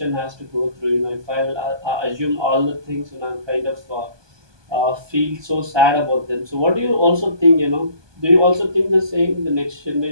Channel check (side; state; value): left; late; 1.2 ms